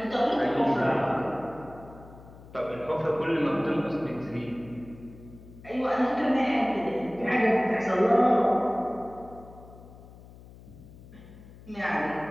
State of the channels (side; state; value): left; noise; hum, 19 dB below the sound